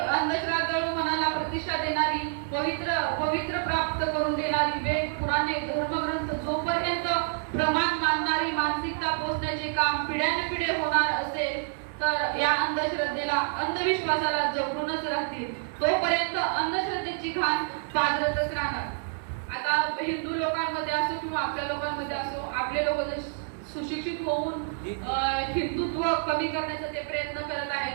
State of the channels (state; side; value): silent; left; digital silence